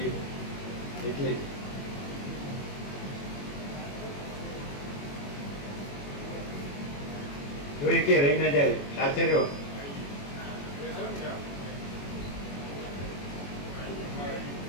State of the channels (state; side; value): late; right; 21 ms